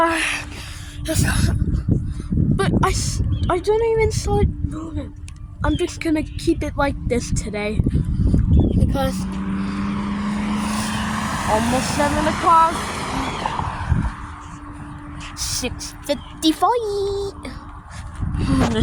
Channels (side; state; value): both; identical; correlation 1.00